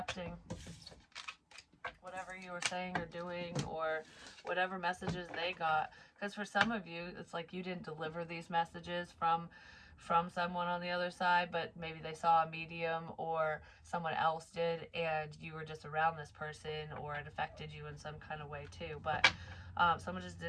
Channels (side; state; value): both; identical; correlation 1.00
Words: whatever you were saying or doing, or whatever messages they got. Because for some of you, it's like you didn't deliver these messages from someone on the other side, but maybe they saw a medium or someone else did, and you were just around this person, or it affected you in some kind of way too. But someone just